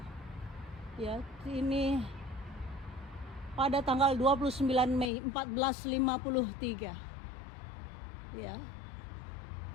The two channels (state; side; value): drops out; right; at 5.1 s